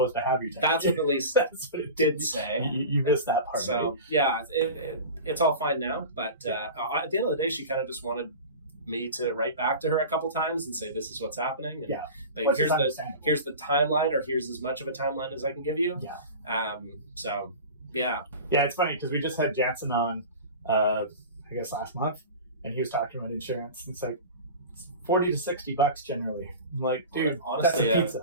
to have your tenant. That's what the lease That's what it did say. You missed that part. So, right? yeah, it's all fine now. But at the end of the day, she kind of just wanted me to write back to her a couple times and say, this is what's happening. And, but here's the timeline, or here's as much of a timeline as I can give you. Yeah. So, yeah. Yeah, it's funny because we just had Jansen on, I guess last month, and he was talking about insurance. And it's like, $40 to $60 generally. I'm like, dude, honestly, that's a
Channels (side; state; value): both; inverted; correlation -0.33